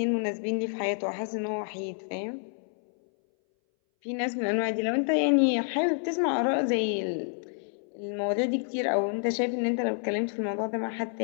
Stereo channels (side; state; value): right; silent; 59 dB below the other